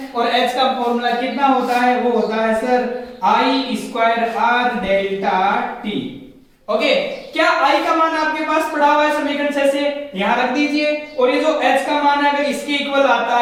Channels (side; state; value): both; identical; correlation 1.00